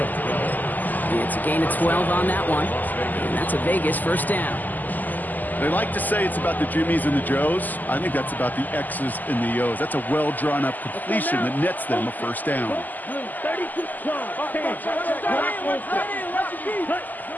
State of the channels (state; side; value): late; right; 0.084 ms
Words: It's a gain of 12 on that one, and that's a Vegas first down. They like to say it's about the Jimmies and the Joes. I think that's about the X's and the O's. That's a well-drawn-up completion that nets them a first down. 32.